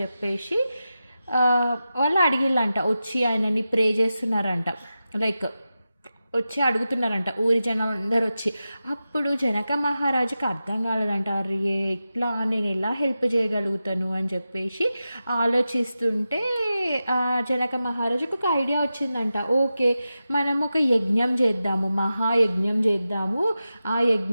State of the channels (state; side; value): inverted; both; correlation -0.92